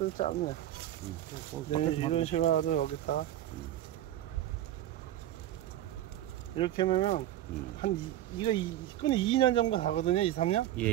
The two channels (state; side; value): quieter; left; 13.0 dB